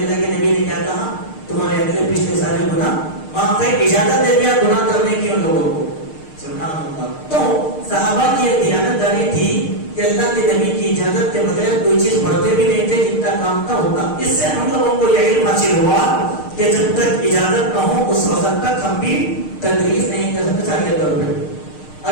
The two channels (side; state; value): right; late; 6.5 ms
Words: کے نبی نے کیا کہا, تمہارے اگلے پچھلے سارے گناہ معاف ہے. اجازت دے دیا گناہ کرنے کی ان لوگوں کو. سبحان اللہ. تو صحابہ کی ایک دیانتداری تھی کہ اللہ کے نبی کی اجازت کے بغیر کوئی چیز پڑھتے بھی نہیں تھے, جتنا کام کا ہوتا. اس سے ہم لوگوں کو یہ علم حاصل ہوا کہ جب تک اجازت نہ ہو اس وقت تک ہم بھی تدریس نہیں کر سکتے چاہیے طور پہ.